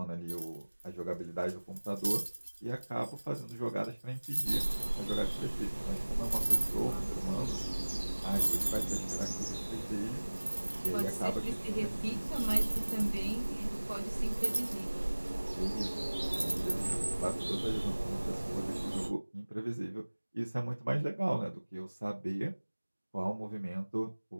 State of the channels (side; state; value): both; inverted; correlation -1.00